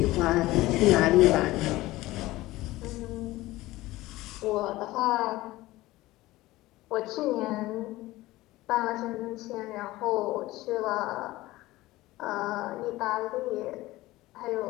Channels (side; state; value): right; quieter; 18.1 dB